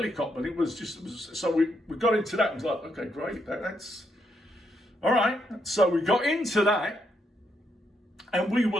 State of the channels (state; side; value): normal; both; correlation 0.77